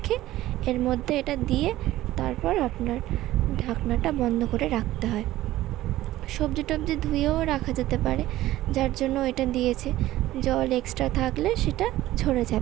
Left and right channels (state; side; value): quieter; left; 15.5 dB